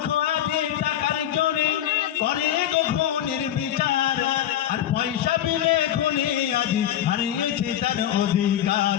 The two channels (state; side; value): quieter; right; 11.3 dB